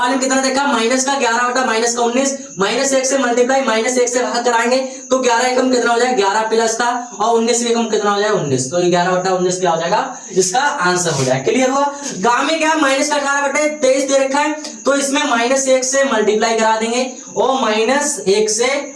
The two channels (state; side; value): identical; both; correlation 1.00